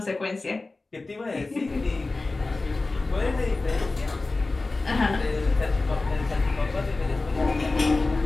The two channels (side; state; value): right; quieter; 3.4 dB